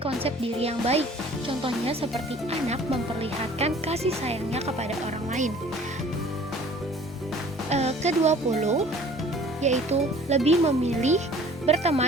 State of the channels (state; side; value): normal; both; correlation 0.50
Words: diri yang baik. Contohnya seperti anak memperlihatkan kasih sayangnya kepada orang lain. Ke-20 yaitu lebih memilih